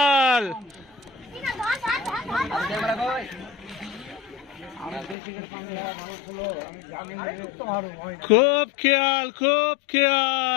খুব খেয়াল খুব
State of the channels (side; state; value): right; drops out; at 5.2 s